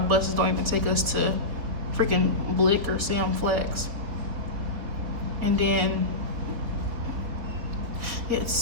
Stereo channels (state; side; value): late; left; 4.3 ms